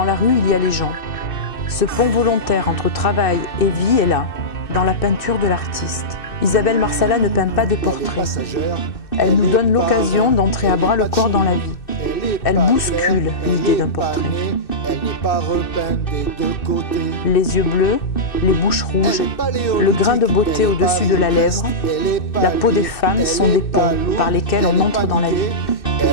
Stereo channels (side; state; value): right; late; 2.6 ms